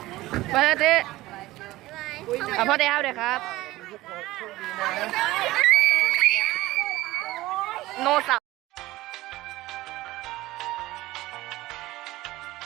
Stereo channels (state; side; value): quieter; left; 17.8 dB